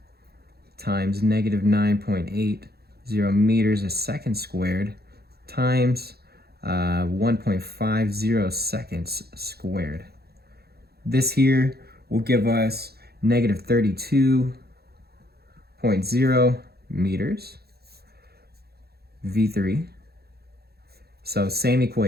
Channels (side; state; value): left; late; 0.46 ms